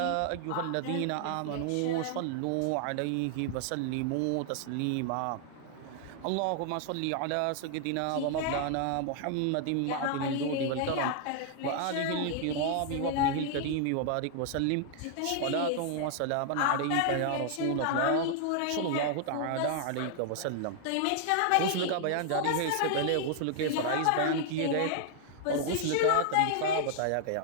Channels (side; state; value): both; different; correlation 0.00